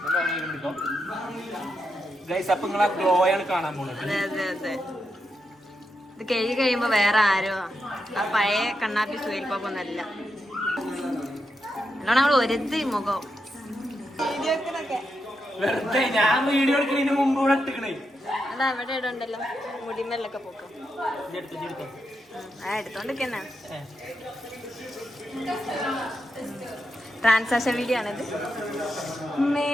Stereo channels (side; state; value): both; normal; correlation 0.85